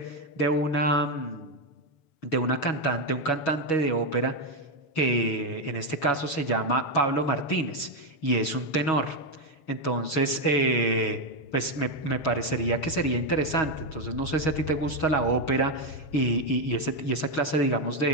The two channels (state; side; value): late; right; 6.3 ms